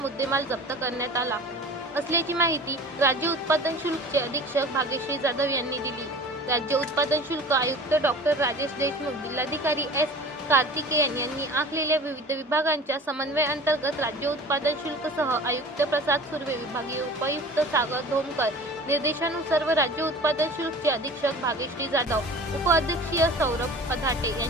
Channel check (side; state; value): both; normal; correlation 0.41